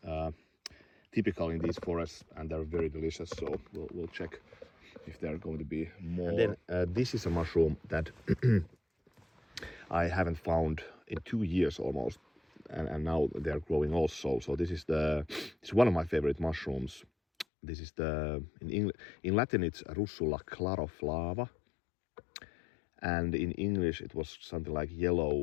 typical in these forests, and they're very delicious. So we'll check if there are going to be more. And then this is a mushroom that I haven't found in 2 years almost, and now they're growing also. So this is it's one of my favorite mushrooms. This is in Latin it's Russula claroflava, and in English it was something like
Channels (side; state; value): right; drops out; at 17.4 s